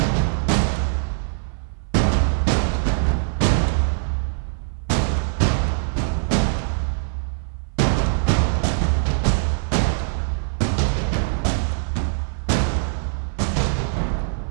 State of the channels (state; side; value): silent; left; 64 dB below the other